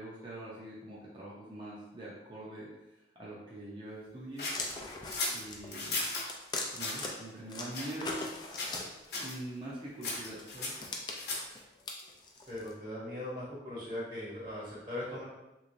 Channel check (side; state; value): both; normal; correlation 0.23